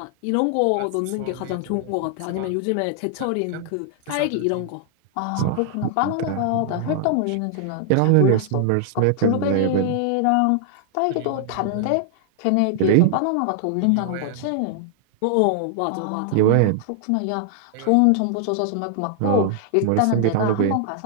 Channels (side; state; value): both; different; correlation -0.01